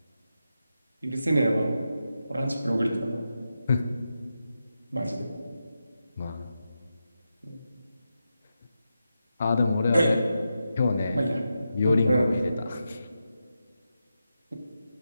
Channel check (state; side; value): inverted; both; correlation -0.89